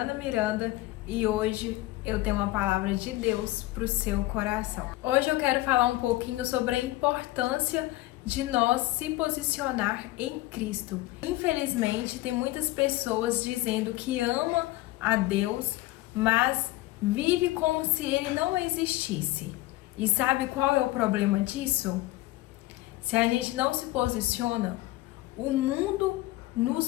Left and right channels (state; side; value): quieter; right; 17.9 dB